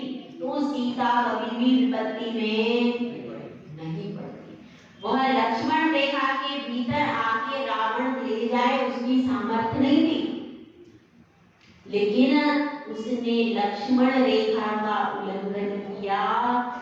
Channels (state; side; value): identical; both; correlation 1.00